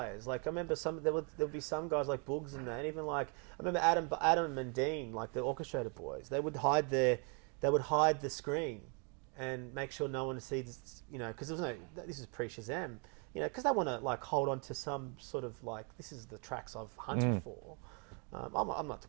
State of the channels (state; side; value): quieter; left; 36.6 dB